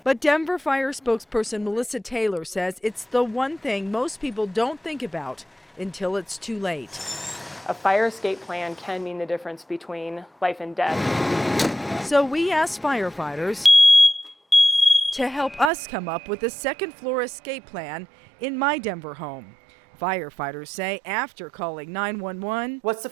But Denver Fire spokesperson Melissa Taylor says it's the one thing most people don't think about until it's too late. A fire escape plan can mean the difference between life and death. So we asked firefighters to help us come up with a second floor escape plan in my Denver home. Firefighters say after calling 911, what's the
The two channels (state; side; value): drops out; left; at 15.7 s